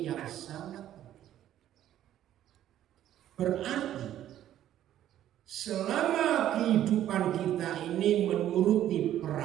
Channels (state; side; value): quieter; left; 11.9 dB